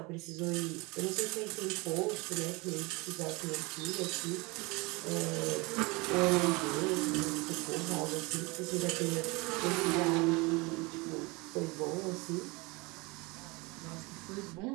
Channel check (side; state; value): left; quieter; 25.9 dB